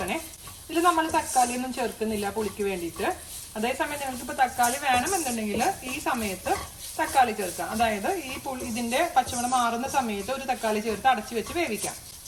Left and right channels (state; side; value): identical; both; correlation 1.00